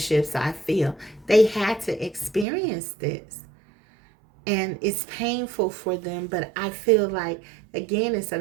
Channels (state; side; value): drops out; left; at 2.5 s